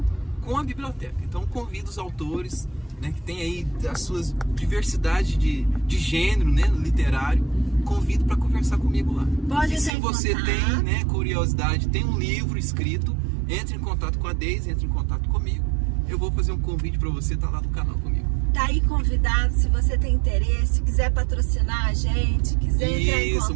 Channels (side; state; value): left; drops out; at 9.9 s